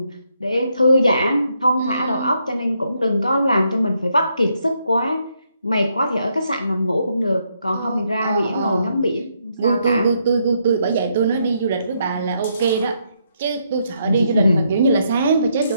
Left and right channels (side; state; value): both; inverted; correlation -0.76